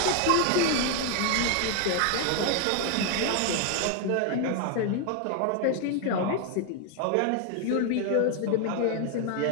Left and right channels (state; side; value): different; both; correlation 0.01